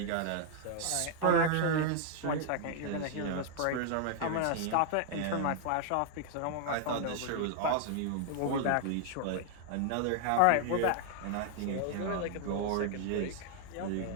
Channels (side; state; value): both; different; correlation 0.00